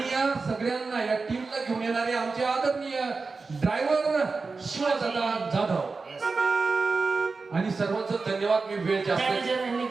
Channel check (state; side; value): quieter; left; 4.2 dB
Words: या सगळ्यांना या टीमला घेऊन येणारे आमचे आदरणीय ड्रायव्हर शिवदादा जाधव Yes. आणि सर्वांचं धन्यवाद. मी वेळ जास्त मॅनेजर राहिले